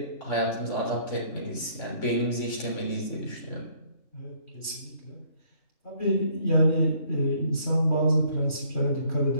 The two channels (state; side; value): late; right; 3.2 ms